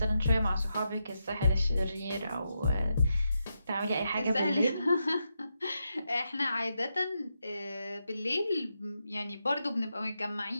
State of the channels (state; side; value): inverted; both; correlation -0.85